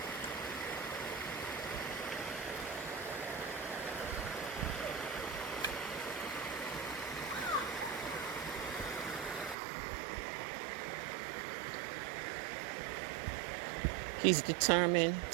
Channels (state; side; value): drops out; left; at 9.6 s